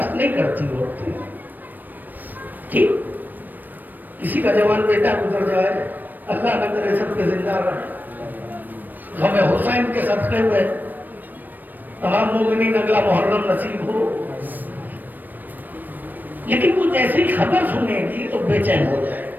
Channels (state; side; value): late; left; 0.089 ms